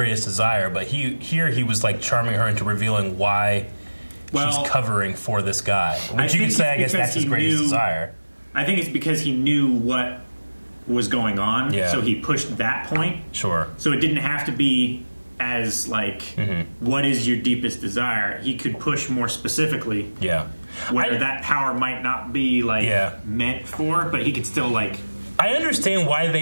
desire? But here he was like charming her into revealing why she's covering for this guy. Which you could say, I guess that's his greatest desire. I think it's because he knew what was going on, so he pushed that point. Sure. So it didn't have to be as like, what is your deepest desire? He could push more specifically. Yeah. Where that power might not be like meant for, but he could still like. I understand why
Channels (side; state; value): both; inverted; correlation -1.00